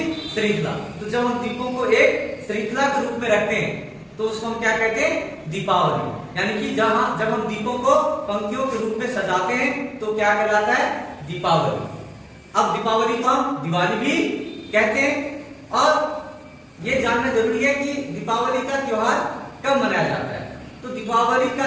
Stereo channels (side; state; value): both; identical; correlation 1.00